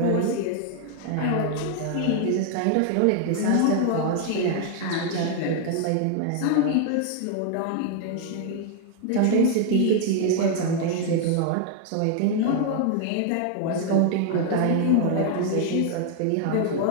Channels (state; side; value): different; both; correlation 0.00